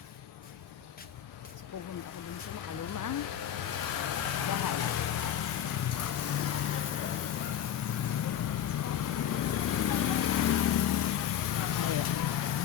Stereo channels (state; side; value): quieter; right; 9.9 dB